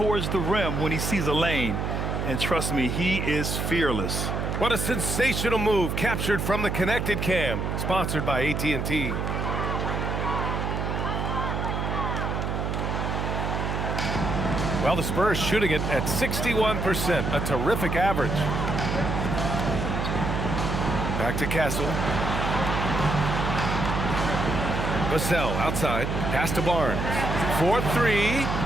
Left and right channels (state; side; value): noise; right; hum, 1 dB below the sound